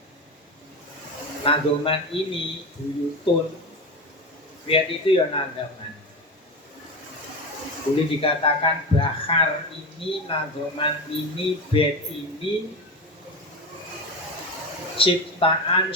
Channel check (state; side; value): normal; both; correlation 0.22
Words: nadoman ini buyutun. Lihat itu ya nadoman. Boleh dikatakan bahar ini, nadoman ini, bait ini ciptaan